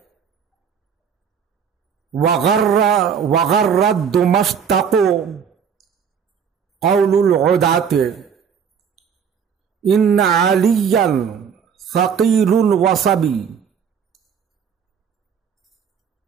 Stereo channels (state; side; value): quieter; left; 7.2 dB